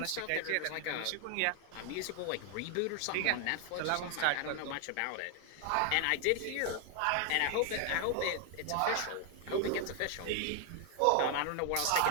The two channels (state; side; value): different; both; correlation 0.00